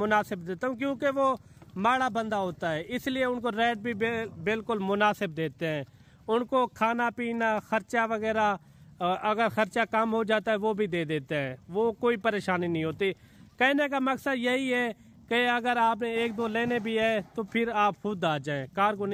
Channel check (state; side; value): identical; both; correlation 1.00